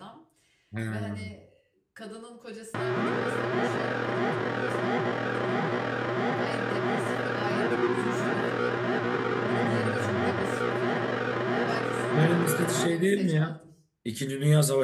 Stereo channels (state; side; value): identical; both; correlation 1.00